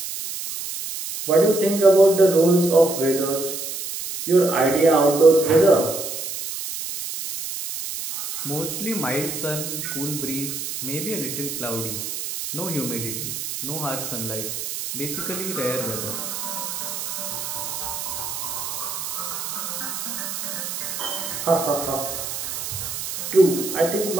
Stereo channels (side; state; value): right; noise; hiss, 5 dB below the sound